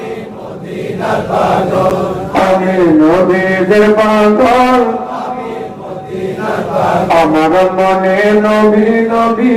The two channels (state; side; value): identical; both; correlation 1.00